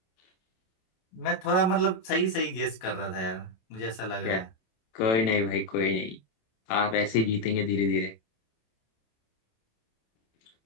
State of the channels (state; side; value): late; right; 27 ms